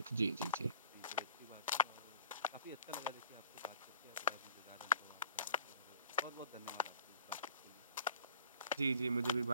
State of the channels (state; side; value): inverted; both; correlation -0.48